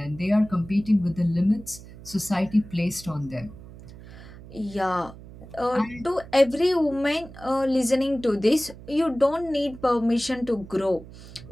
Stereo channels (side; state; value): right; noise; hum, 17 dB below the sound